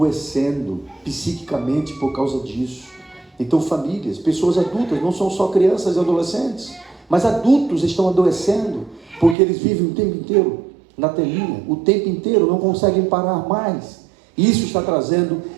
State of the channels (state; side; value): drops out; left; at 9.3 s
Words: psiquicamente por causa disso. Então famílias, pessoas adultas, não são só crianças e adolescentes, mas adultos estão adoecendo, porque eles vivem o tempo inteiro na telinha, o tempo inteiro, não conseguem parar mais. Isso está trazendo